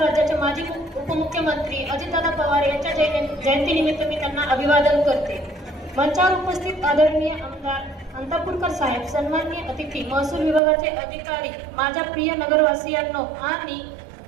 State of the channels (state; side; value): drops out; left; at 10.6 s